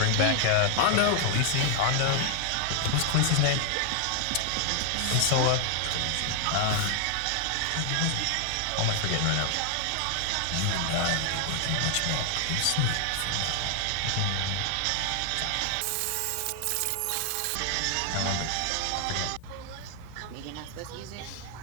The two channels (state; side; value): different; both; correlation 0.00